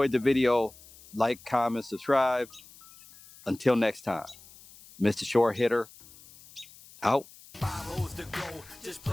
the video, like, comment, subscribe. Until next time, Mr. Short Hitter, out. 5 holes to go, just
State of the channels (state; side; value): noise; left; hiss, 22 dB below the sound